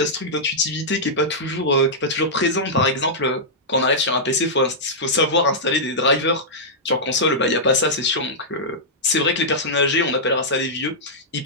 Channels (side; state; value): both; normal; correlation -0.11